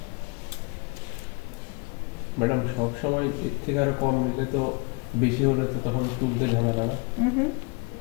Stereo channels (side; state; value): right; quieter; 31.1 dB